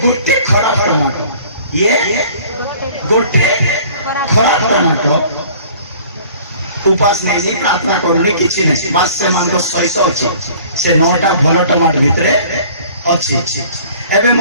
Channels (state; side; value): inverted; both; correlation -0.50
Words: गोटे खराब टमाटो ये गोटे खराब टमाटो उपास नहीं प्रार्थना करने किसी नहीं बास से मान को सहित अच्छी से 9टा भल टमाटो भितरे अच्छी एबे